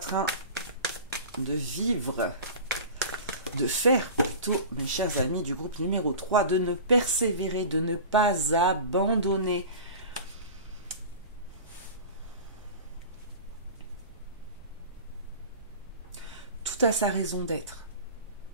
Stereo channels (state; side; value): inverted; both; correlation -0.35